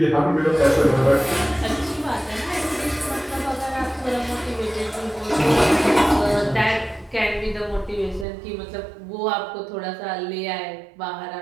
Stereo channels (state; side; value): drops out; left; at 8.2 s